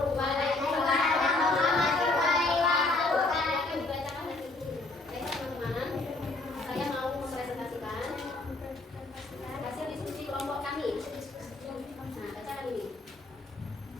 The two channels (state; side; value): quieter; right; 3.1 dB